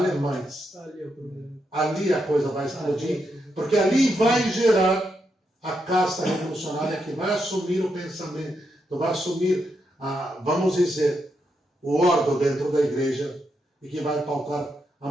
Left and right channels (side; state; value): both; normal; correlation 0.82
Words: ali a coisa vai explodir, porque ali vai gerar a casta revolucionária que vai assumir o pensamento, vai assumir, vamos dizer, o ordo dentro da igreja, e que vai pautar a